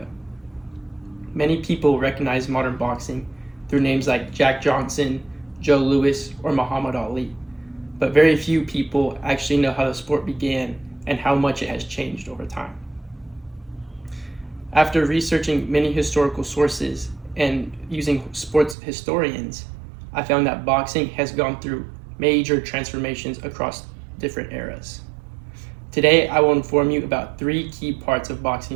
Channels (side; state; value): left; drops out; at 18.8 s